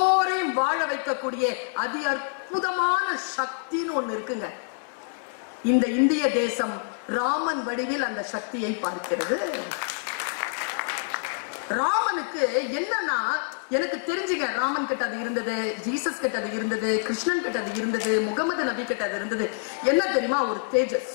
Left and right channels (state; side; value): silent; right; 61 dB below the other